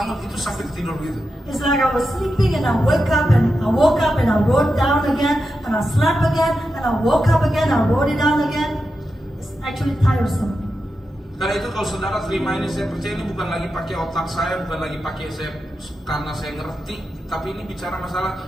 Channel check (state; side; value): normal; both; correlation 0.89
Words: itu sampai tidur gitu. It's like I was sleeping and I woke up and I wrote down again and I slept again and I woke up again, I wrote it down again. It's actually tiresome. Karena itu kalau saudara terima ini, saya percaya ini bukan lagi pakai otak saya, bukan lagi pakai saya karena saya ngerti, tapi ini bicara masalah